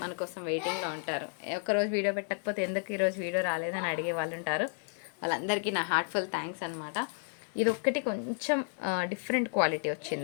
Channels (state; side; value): silent; right; 56 dB below the other